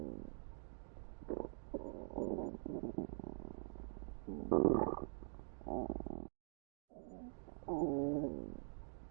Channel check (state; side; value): silent; left; digital silence